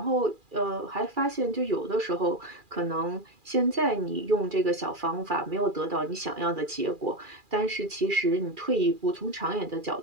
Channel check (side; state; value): left; late; 2.4 ms